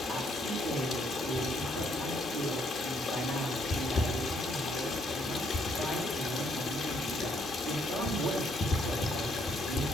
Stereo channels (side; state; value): both; normal; correlation 0.70